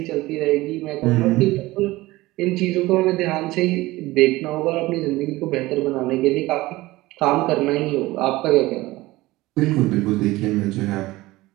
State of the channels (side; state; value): left; quieter; 19.0 dB